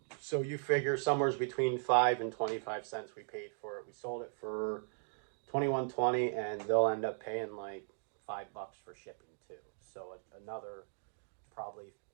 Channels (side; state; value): left; silent; digital silence